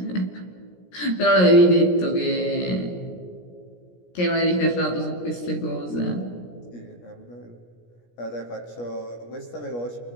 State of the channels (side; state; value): right; late; 17 ms